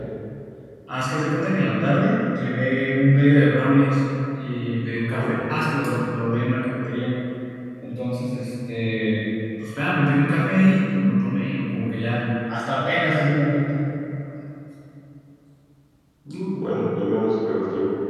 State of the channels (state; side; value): identical; both; correlation 1.00